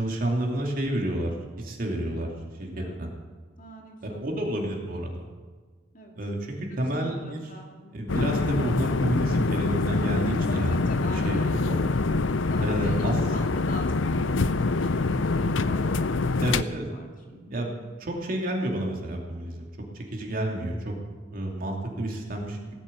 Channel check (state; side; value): normal; both; correlation 0.60